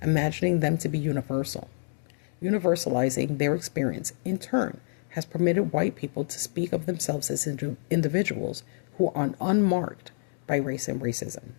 imagining them to be universal. Universalizing their experience, in turn, has permitted white people to speak of themselves as individuals who are unmarked by race and racism.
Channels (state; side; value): silent; right; digital silence